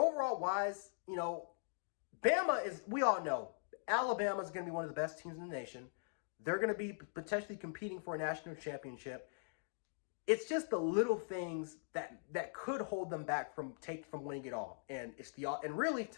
wise, Bama is, we all know, Alabama is going to be one of the best teams in the nation. They're going to be potentially competing for a national championship. It's just the little things that could hold them back from winning it all. And really,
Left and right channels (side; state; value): right; silent; digital silence